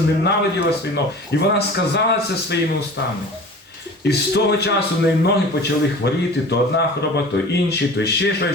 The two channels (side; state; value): both; normal; correlation 0.40